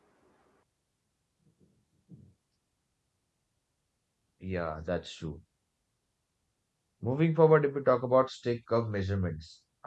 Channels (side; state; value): both; identical; correlation 1.00